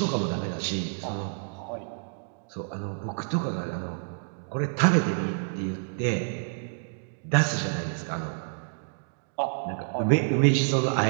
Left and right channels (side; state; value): left; silent; digital silence